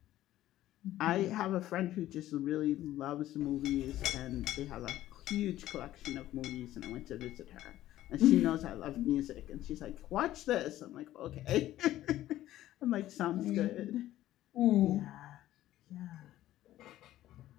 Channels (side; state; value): right; quieter; 14.1 dB